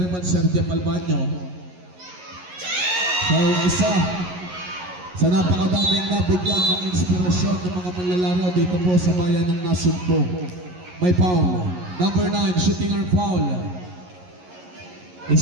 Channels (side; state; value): left; late; 11 ms